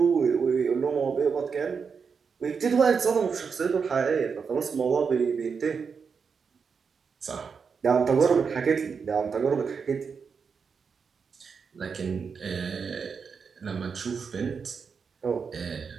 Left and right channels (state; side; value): quieter; left; 5.8 dB